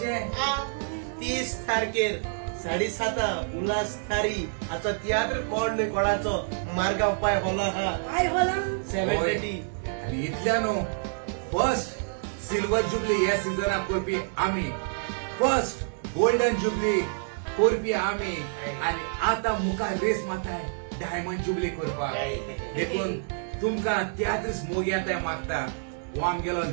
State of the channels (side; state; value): left; silent; digital silence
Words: 30 तारखेर 7:30 उल्हास थारी आजचो तियात्र कोण न्ही कोणाचो मार्गाव पाय होला हा काय होला 7:30 आणि इतल्या न्हू फर्स्ट सिल्वर जुबली ह्या सिजनाक करपी आमी फर्स्ट गोल्डन जुबली करपी आमी आणि आता मुखार रेस मारताय डायमंड जुबली करपाक देखून तुमकां तियात्रच मोग येताय मागता हो आमगेलो